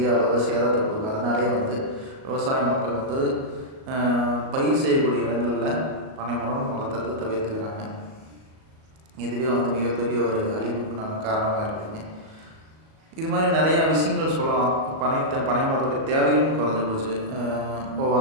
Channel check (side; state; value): left; late; 37 ms